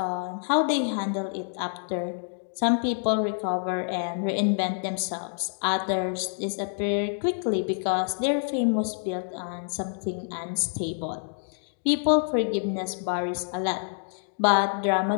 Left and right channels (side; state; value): right; silent; digital silence